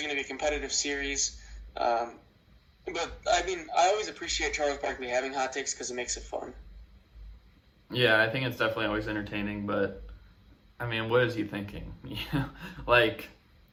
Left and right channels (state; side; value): identical; both; correlation 1.00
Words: going to be a competitive series. But, I mean, I always appreciate Charles Barkley having hot takes because it makes it fun. Yeah, I think it's definitely always entertaining, but, I mean, what is he thinking? Like,